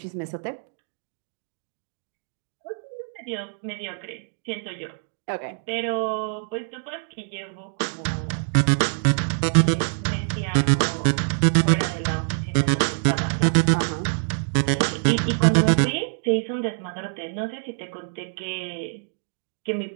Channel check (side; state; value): left; silent; digital silence